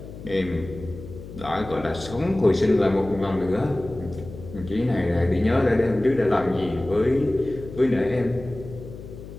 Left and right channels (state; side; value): noise; left; hum, 13 dB below the sound